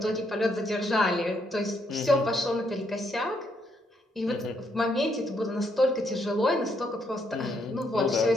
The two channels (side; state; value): both; normal; correlation 0.74